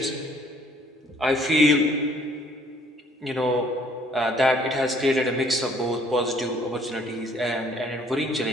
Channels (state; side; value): normal; both; correlation 0.61